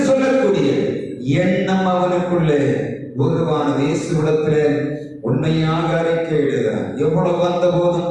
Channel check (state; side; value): identical; both; correlation 1.00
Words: சொல்லக்கூடிய எண்ணம் அவனுக்குள்ளே உருவானது. இயேசுவிடத்திலே உண்மையாக அறிக்கையிடுகிறான். எவ்வளவு வந்த போதும்